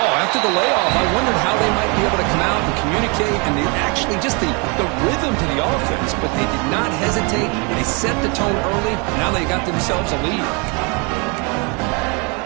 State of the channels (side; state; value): left; quieter; 32.0 dB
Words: After the layoff, I wondered how they might be able to come out and communicate and actually just the rhythm to the offense. But they did not hesitate. They set the tone early. Now they got themselves a lead.